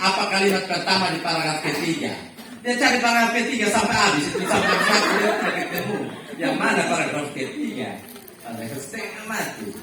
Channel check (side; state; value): both; identical; correlation 1.00